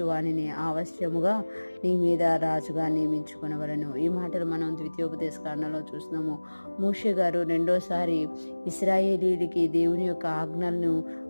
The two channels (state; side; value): inverted; both; correlation -1.00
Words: వానిని అవశ్యముగా నీ మీద రాజుగా నియమించుకునవలను. ఈ మాటలు మనం ద్వితీయోపదేశ కాండంలో చూస్తున్నాము. మోషే గారు రెండోసారి ఇశ్రాయేలీయులకి దేవుని యొక్క ఆజ్ఞలను